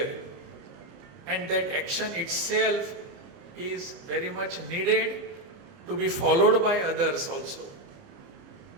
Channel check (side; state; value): left; late; 29 ms